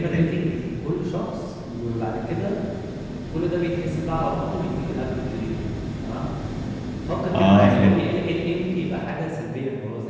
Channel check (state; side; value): identical; both; correlation 1.00